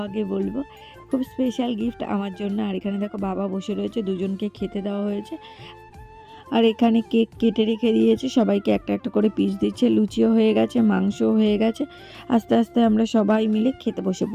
বলবো, খুব স্পেশাল গিফট আমার জন্য। আর এখানে দেখো বাবা বসে রয়েছে, দুজনকে খেতে দেওয়া হয়েছে। আর এখানে কেক কেটে রেখে দিয়েছি, সবাইকে একটা একটা করে পিস দিচ্ছে, লুচিও হয়ে গেছে, মাংসও হয়ে গেছে। আস্তে আস্তে আমরা সবাই মিলে খেতে বসে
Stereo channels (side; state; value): both; identical; correlation 1.00